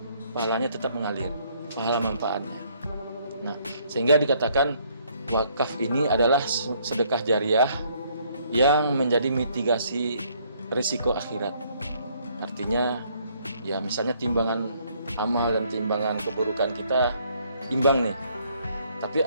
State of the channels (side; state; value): both; inverted; correlation -0.66